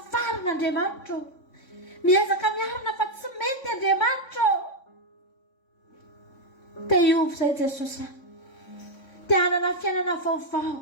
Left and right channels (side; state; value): right; late; 3.6 ms